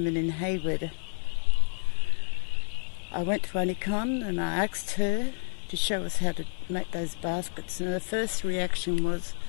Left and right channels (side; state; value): right; silent; 58 dB below the other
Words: in Hayward. I went to Aunty Con and I asked her to show us how to make those baskets, and the first reaction was,